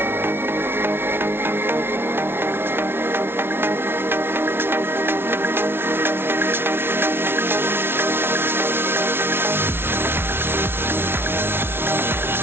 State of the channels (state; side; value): late; left; 0.11 ms